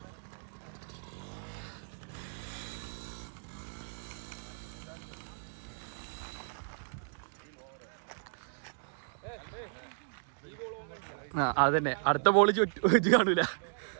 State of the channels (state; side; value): silent; left; digital silence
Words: അതന്നെ അടുത്ത ബോള് ചുറ്റി കാണൂല.